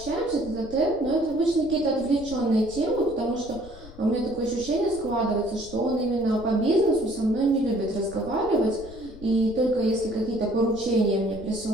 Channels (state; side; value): noise; left; rumble, 17 dB below the sound